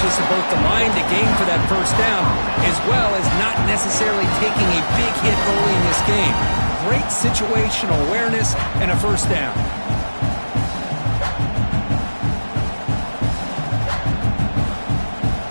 of both the line to gain for that first down, as well as not necessarily taking a big hit early in this game. Great situational awareness and a first down.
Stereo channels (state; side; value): inverted; both; correlation -1.00